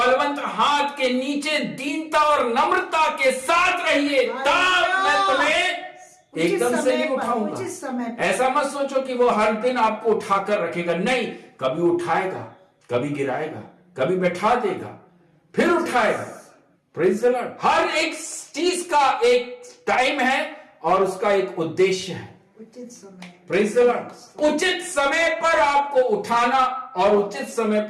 हाथ के नीचे दीनता और नम्रता के साथ रहिए, तब मैं तुम्हें एकदम से नहीं उठाऊंगा। ऐसा मत सोचो कि वो हर दिन आपको उठाकर रखेगा, नहीं, कभी उठाएगा, कभी गिराएगा, कभी बैठा देगा, फिर उठाएगा। Praise the Lord. हर एक चीज का एक टाइम है और उसका एक उद्देश्य है। उचित समय। Praise the Lord. उचित समय पर आपको उठाना और उचित समय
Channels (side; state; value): both; identical; correlation 1.00